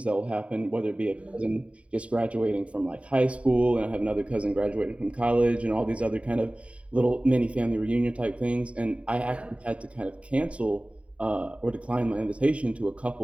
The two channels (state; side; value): late; left; 0.064 ms